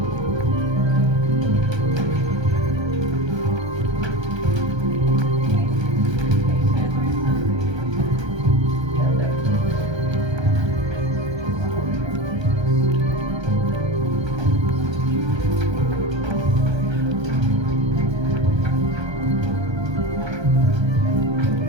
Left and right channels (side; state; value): left; late; 1.3 ms